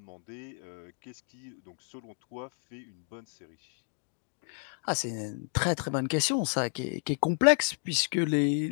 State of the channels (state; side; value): silent; right; 57 dB below the other